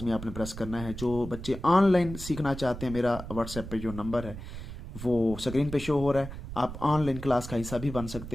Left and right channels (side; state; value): right; noise; rumble, 10 dB below the sound